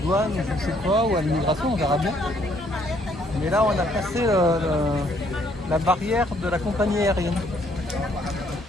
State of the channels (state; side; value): normal; both; correlation 0.66